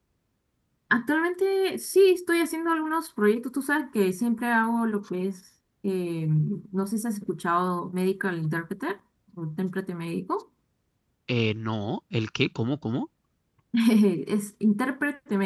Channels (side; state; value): both; identical; correlation 1.00